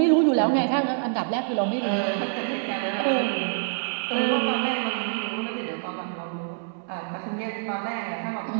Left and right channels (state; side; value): silent; left; 61 dB below the other